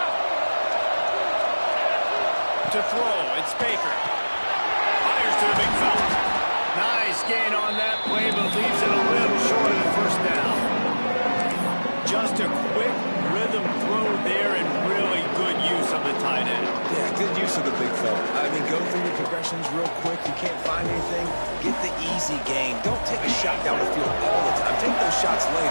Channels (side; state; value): both; inverted; correlation -1.00